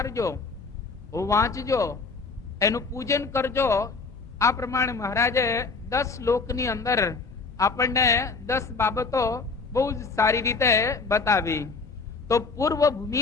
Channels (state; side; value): quieter; right; 4.3 dB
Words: વાંચજો, એનું પૂજન કરજો. આ પ્રમાણે મહારાજે 10 શ્લોકની અંદર આપણને 10 બાબતો બહુ જ સારી રીતે બતાવી. તો પૂર્વ